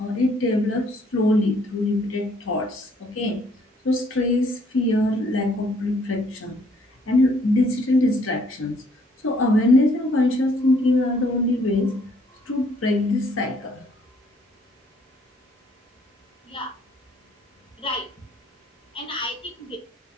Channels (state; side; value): normal; both; correlation 0.64